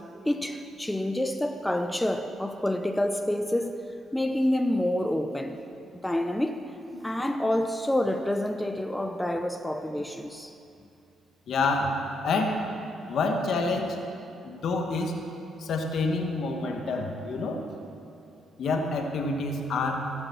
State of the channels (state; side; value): normal; both; correlation 0.84